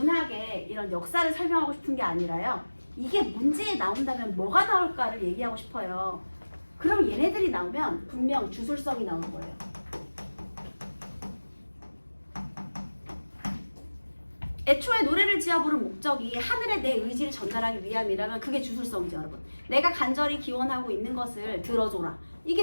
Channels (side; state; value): both; inverted; correlation -1.00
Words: 이런 역사를 설명하고 싶은 게 아니라요. 이게 문제에 나온다면 뭐가 나올까를 얘기하고 싶어요. 그럼 얘네들이 나오면 분명 주술성이 나올 거예요. 애초에 노래를 지어 부른 목적이 하늘에 내 의지를 전달하기 위함이라면 그게 주술성이죠, 여러분. 내가 간절히 기원하고 있는 것을 들어줘라.